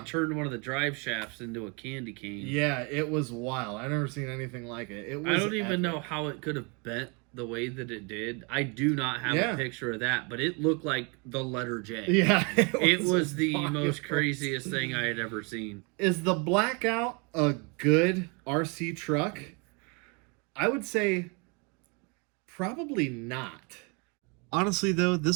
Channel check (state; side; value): quieter; left; 32.3 dB